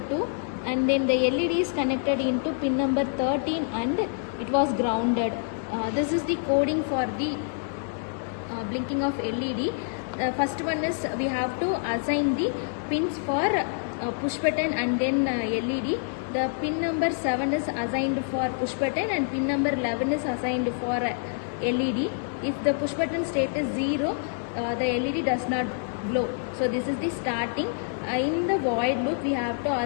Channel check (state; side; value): silent; right; digital silence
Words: 2, and then the LED is connected into pin number 13 and it was grounded. This is the coding for the blinking of LED. First one is we have to assign the pins for push button and then LED. The pin number 7 is assigned for push button and pin number 11 is assigned for LED. If the push button state is 0, the LED does not glow. So this is the starting. In the void loop we have to